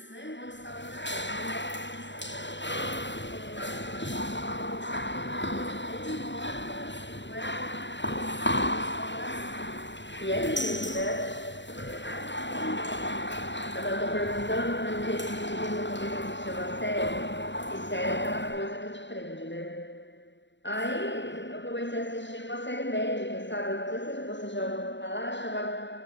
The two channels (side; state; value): right; late; 0.53 ms